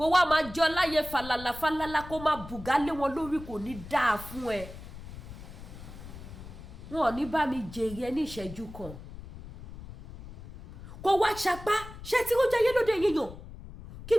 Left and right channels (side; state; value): left; noise; rumble, 14 dB below the sound